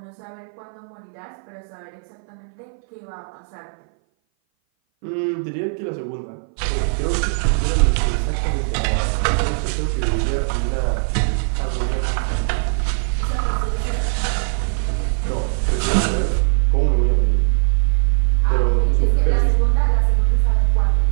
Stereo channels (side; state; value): left; silent; 58 dB below the other